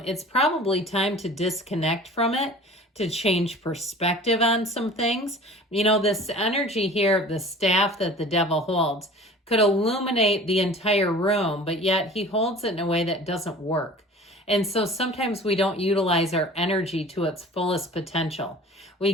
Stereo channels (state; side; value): normal; both; correlation 0.43